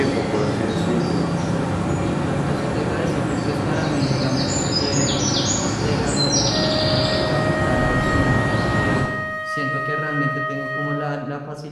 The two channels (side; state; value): both; identical; correlation 1.00